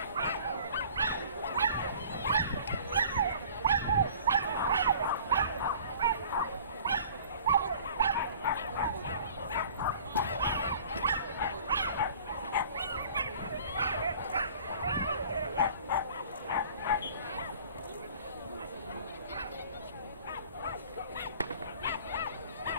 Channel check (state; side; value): inverted; both; correlation -0.48